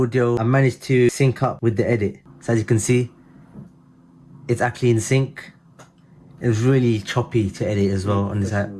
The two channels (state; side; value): identical; both; correlation 1.00